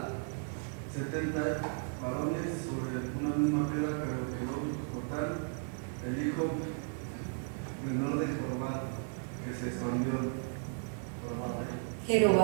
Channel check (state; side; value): silent; left; 55 dB below the other